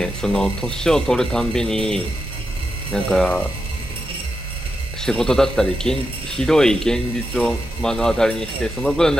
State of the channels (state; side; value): normal; both; correlation 0.87